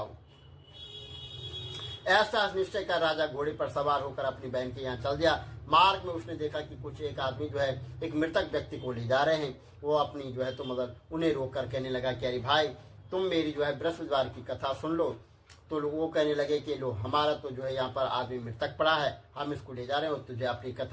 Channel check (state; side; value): identical; both; correlation 1.00